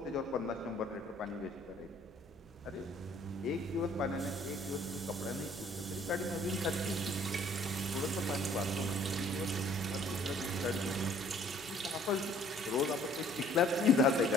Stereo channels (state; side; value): normal; both; correlation 0.57